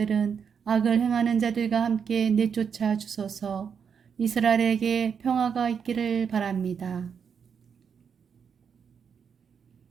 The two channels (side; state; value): left; quieter; 6.9 dB